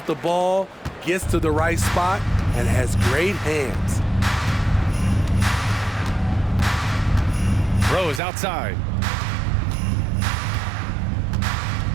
the ball, gets to the right spot, and has great hands. Rose outside.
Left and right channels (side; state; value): left; drops out; at 8.2 s